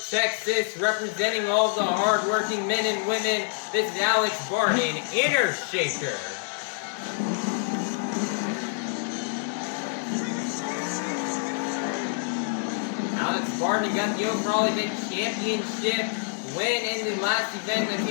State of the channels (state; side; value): silent; right; 59 dB below the other